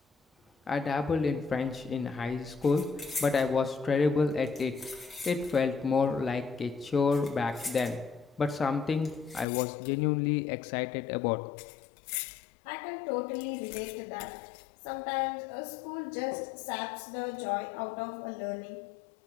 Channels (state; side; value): drops out; right; at 9.5 s